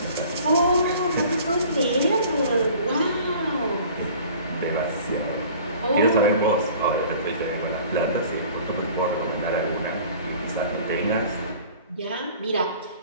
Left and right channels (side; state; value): both; inverted; correlation -0.48